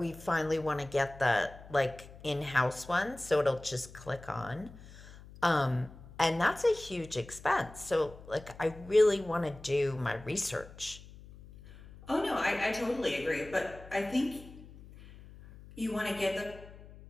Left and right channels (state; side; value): noise; left; hum, 18 dB below the sound